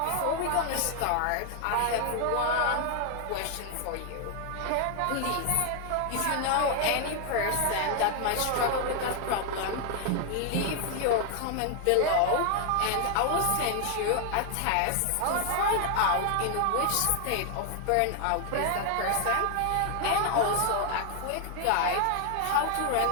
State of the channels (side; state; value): both; different; correlation 0.00